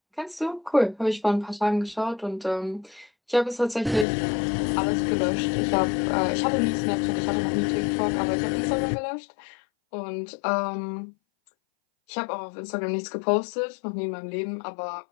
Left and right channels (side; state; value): right; drops out; at 4.0 s